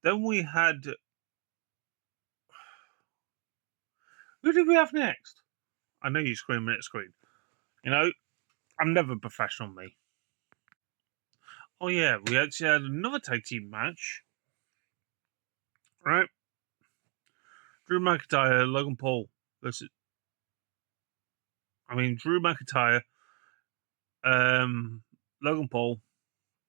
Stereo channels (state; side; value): quieter; left; 35.3 dB